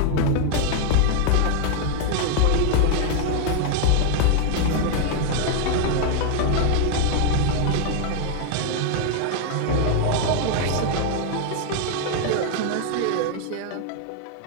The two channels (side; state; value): both; different; correlation 0.00